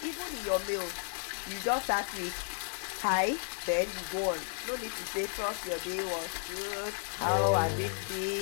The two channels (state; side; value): silent; right; 56 dB below the other